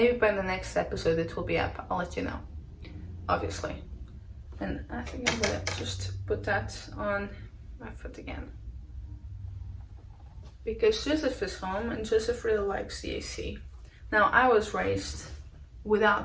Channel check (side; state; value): both; identical; correlation 1.00